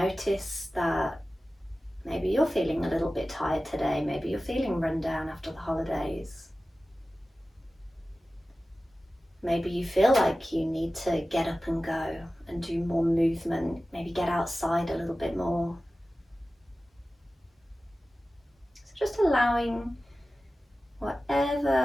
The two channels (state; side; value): normal; both; correlation 0.96